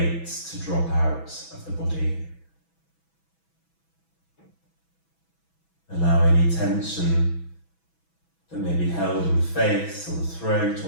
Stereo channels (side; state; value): right; late; 6.1 ms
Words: to drop out of the body. Allow any tension that may be held in the face or the throat